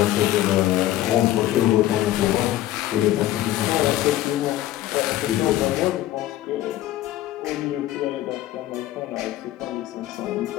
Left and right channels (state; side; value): quieter; right; 14.1 dB